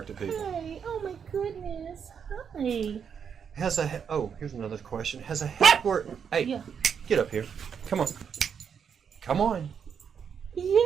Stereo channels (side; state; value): left; quieter; 7.2 dB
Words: at people. Hi. Oh my goodness. Hi. Here's another question. Has a heckler... Hey, Yeah. Get up here. Come on. Come on.